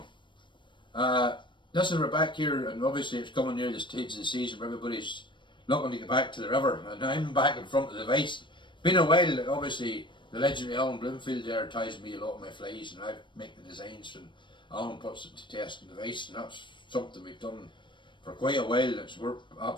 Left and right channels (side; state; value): right; late; 0.23 ms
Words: listen, we're back here, and obviously it's coming near the stage of the season where everybody's looking to get back to the river, and I'm back in front of the vice. Been a while. Obviously the legendary Alan Bloomfield there ties me a lot of my flies, and I make the designs, and Alan puts it to test in the vice, and that's something we've done for quite a while. It's worked